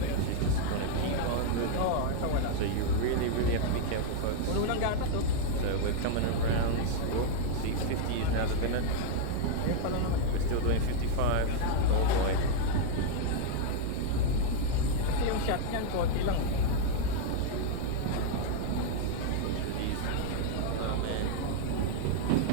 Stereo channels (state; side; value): different; both; correlation 0.00